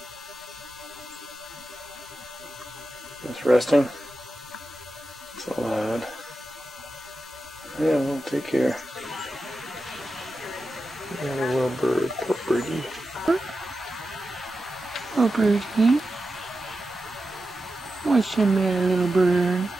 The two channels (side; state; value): both; normal; correlation 0.91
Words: Just resting. It's loud. Yeah, well, take care. Got a little bird. Poor birdie. Oh, birdie. What's the matter, little bird?